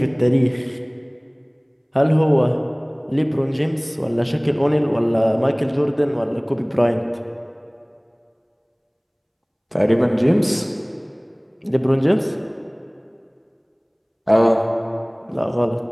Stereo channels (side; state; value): both; identical; correlation 1.00